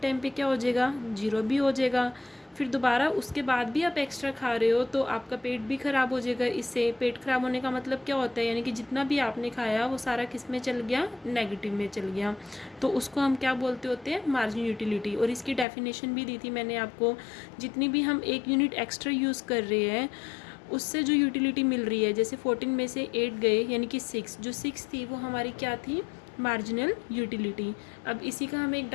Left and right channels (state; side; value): drops out; right; at 15.7 s